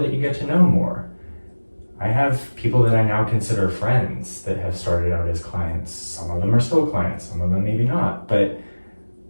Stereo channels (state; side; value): inverted; both; correlation -1.00